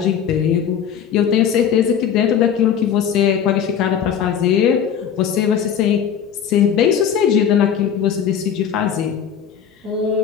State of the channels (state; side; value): quieter; right; 8.2 dB